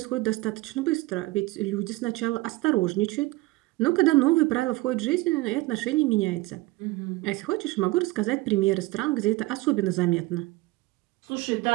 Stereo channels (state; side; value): quieter; left; 20.6 dB